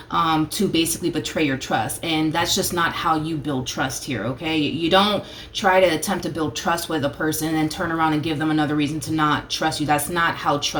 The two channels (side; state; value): both; identical; correlation 1.00